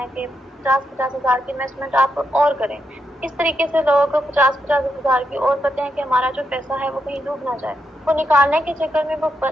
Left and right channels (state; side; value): normal; both; correlation 0.82